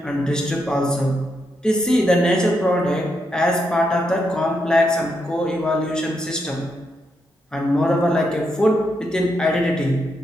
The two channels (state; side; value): normal; both; correlation 0.81